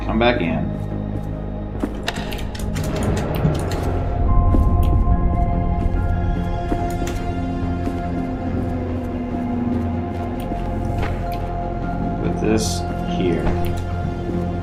come back in. Put this here.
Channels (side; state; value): both; identical; correlation 1.00